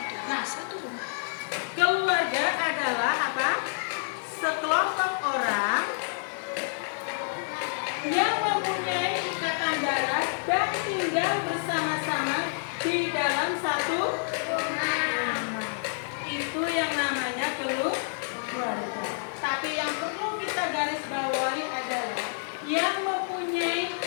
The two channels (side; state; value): right; silent; 59 dB below the other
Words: dalam satu rumah. Keluarga adalah apa? Sekelompok orang yang mempunyai ikatan darah dan tinggal bersama-sama di dalam satu rumah. Itu yang namanya keluarga. Tapi yang perlu kita garis bawahi adalah yang mempunyai